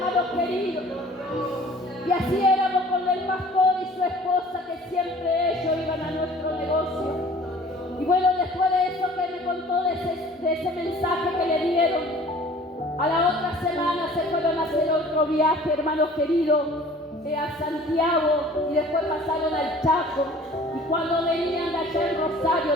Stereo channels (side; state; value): both; normal; correlation 0.49